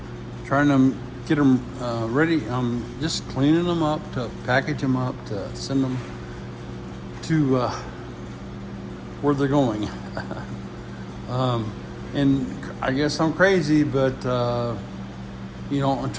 to get them ready. I'm just cleaning them up to package them up to send them to where they're going. And I guess I'm crazy, but I'm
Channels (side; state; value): both; identical; correlation 1.00